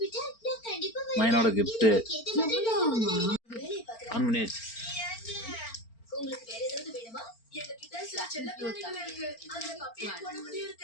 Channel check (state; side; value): late; right; 4.4 ms